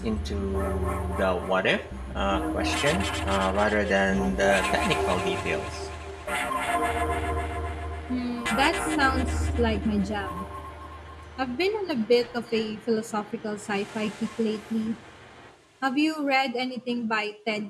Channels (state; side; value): identical; both; correlation 1.00